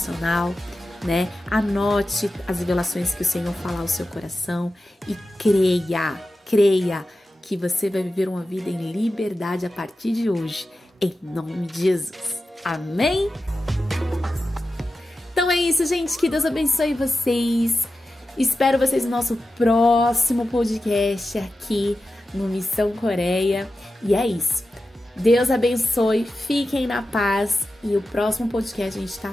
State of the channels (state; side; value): normal; both; correlation 0.92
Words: né? Anote as revelações que o Senhor fala ao seu coração e creia que você vai viver uma vida em liberdade a partir de hoje, em nome de Jesus. Amém? Então é isso, gente. Que Deus abençoe vocês. Espero vocês no nosso próximo podcast aqui no Missão Coreia. E é isso. Deus abençoe, fiquem na paz. E o próximo podcast a gente